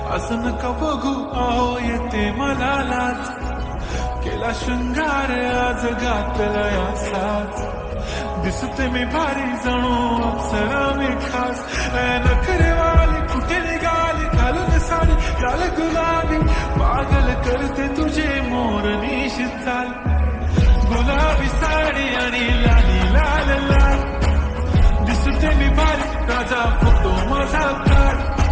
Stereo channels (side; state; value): both; identical; correlation 1.00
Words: असं नका बघू आओ येते मला लाज. केला शृंगार आज घातला या साज, दिसते मी भारी जणू अप्सरा मी खास. नखरेवाली कुठे निघाली घालून साडी लाल गुलाबी, पागल करते तुझे मोरनीशी चाल. गुलाबी साडी आणि लाली लाल लाल, दिसते मी भारी राजा फोटो माझा काढ.